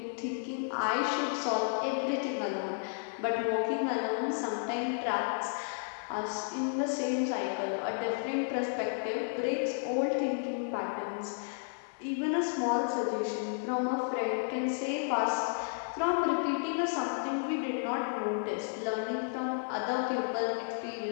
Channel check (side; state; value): right; silent; digital silence